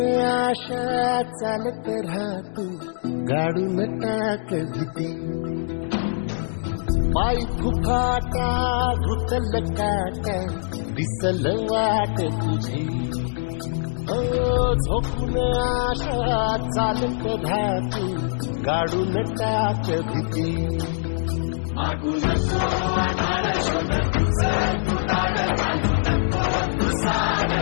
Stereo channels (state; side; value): silent; right; digital silence